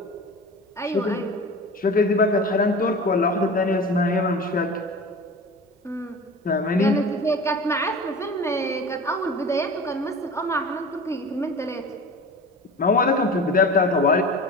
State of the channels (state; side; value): normal; both; correlation 0.36